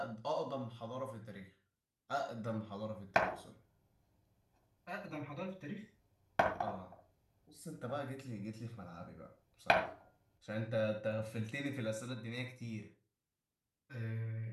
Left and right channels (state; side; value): identical; both; correlation 1.00